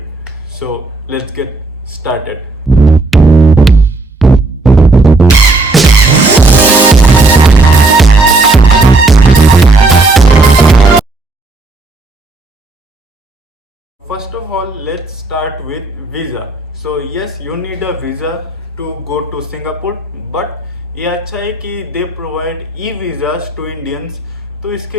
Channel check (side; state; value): left; quieter; 3.2 dB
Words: So let's get started. First of all, let's start with visa. So yes, you need a visa to go to Singapore, but ये अच्छा है कि they provide e visas to Indians, तो